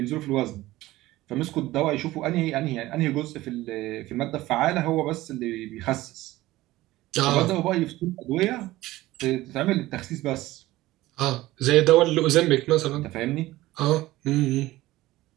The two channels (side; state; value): left; quieter; 17.3 dB